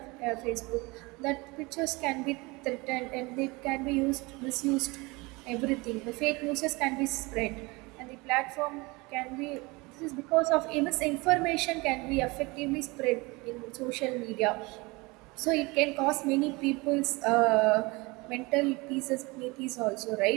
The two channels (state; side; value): quieter; left; 24.8 dB